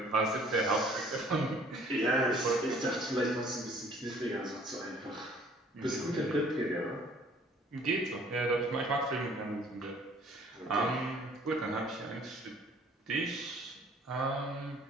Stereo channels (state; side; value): normal; both; correlation 0.56